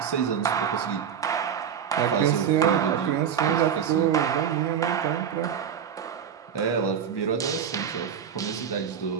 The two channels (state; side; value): quieter; left; 8.0 dB